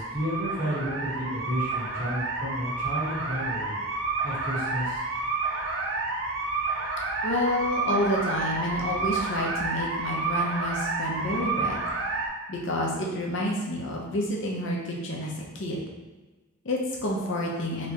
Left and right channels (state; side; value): normal; both; correlation 0.21